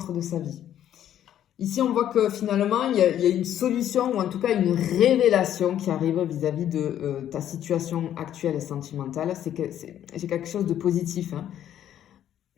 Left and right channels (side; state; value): right; quieter; 10.9 dB